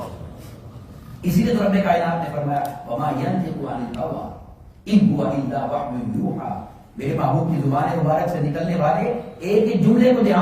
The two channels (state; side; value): identical; both; correlation 1.00